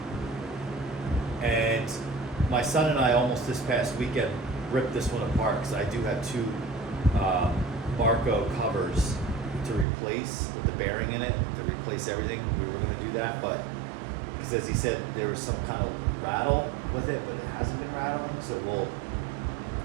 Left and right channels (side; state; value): left; drops out; at 9.9 s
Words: And my son and I almost this past weekend ripped this one apart because I do have two Barco covers to replace with the bearing in it, to replace everything. We were going to do that, but because as he said, there was some kind of rattle with it, but it hasn't been rattling, so we'll